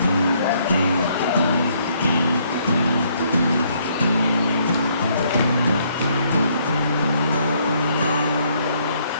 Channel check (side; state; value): both; inverted; correlation -0.68